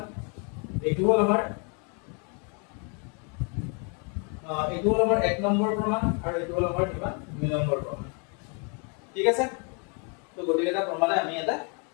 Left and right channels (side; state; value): right; quieter; 36.6 dB